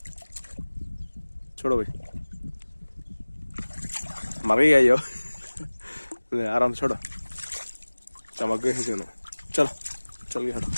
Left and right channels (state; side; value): inverted; both; correlation -1.00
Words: छोड़ो भाई, मर गई यो आराम से छोड़ो, चमक गए दोनों। चलो चल गए, हटो,